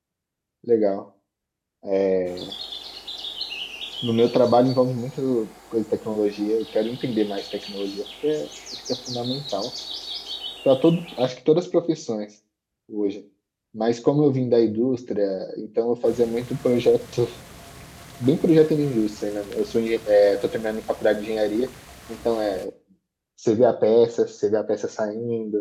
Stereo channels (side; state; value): both; identical; correlation 1.00